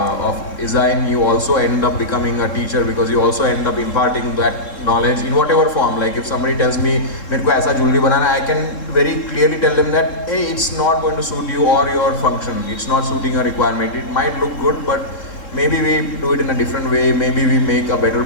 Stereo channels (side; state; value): right; late; 3.7 ms